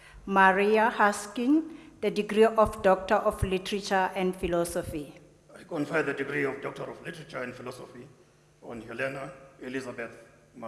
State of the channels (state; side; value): identical; both; correlation 1.00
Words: Maria Haskin the degree of Doctor of Literature and Philosophy. I confer the degree of Doctor of Literature and Philosophy on Helena Elizabeth